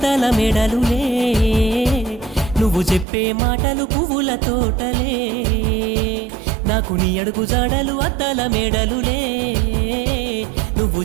మేడలులే, నువ్వు చెప్పే మాటలు పువ్వుల తోటలే. నాకు నీ అడుగు జాడలు అద్దాల మేడలులే, నువ్వు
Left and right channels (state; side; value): drops out; left; at 3.1 s